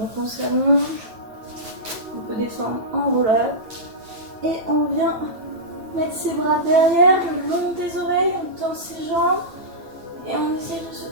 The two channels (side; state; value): left; late; 9.0 ms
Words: on s'allonge, on peut descendre en roll-up et on vient mettre ses bras derrière, le long des oreilles, on tend ses jambes et on essaie de se